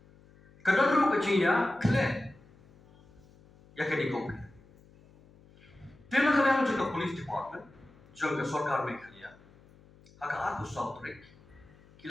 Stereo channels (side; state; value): left; noise; hum, 26 dB below the sound